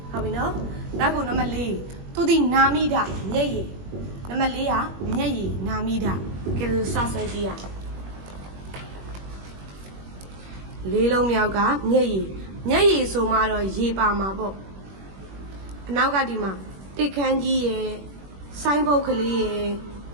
ဟုတ်ပြီနော်နောက်ခုနံပါတ်4သူဒီနာမိတာမျက်ရည်နံပါတ်4ကမျက်ရည်နာမိတာကဲလို့စဆွဲကြည့်ရလေးလုံးမြောက်ကမျက်ရည်ဆိုမှတော့ရေပါမှာပေါ့အနောက်ကဒီမှာတစ်ခန်းကြီးရယ်ဆိုင်းဘုတ်ကလေးရယ်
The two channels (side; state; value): left; late; 21 ms